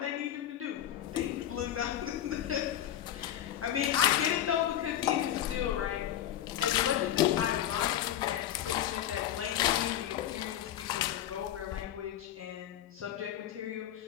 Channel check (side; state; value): right; quieter; 11.5 dB